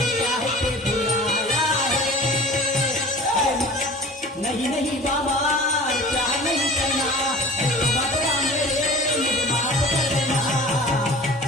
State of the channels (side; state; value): both; normal; correlation 0.41